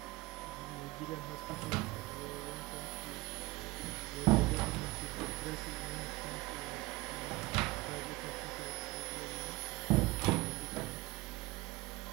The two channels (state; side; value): quieter; left; 21.5 dB